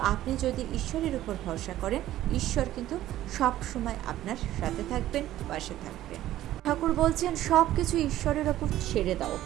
আপনি যদি ঈশ্বরের উপর ভরসা করেন, ঈশ্বর কিন্তু সব সময় আপনার সাথে থাকবেন, পাশে থাকবেন। ঠাকুর বলছেন সব কিছু ঈশ্বরের ওপর ছেড়ে দাও।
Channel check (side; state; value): left; quieter; 13.9 dB